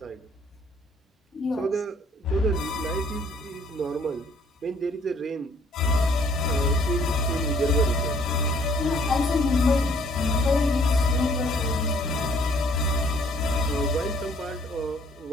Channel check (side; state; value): both; normal; correlation 0.61